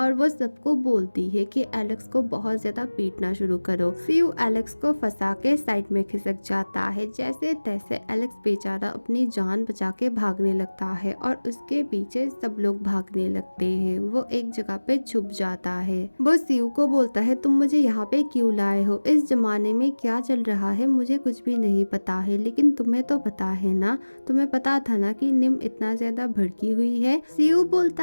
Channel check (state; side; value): inverted; both; correlation -1.00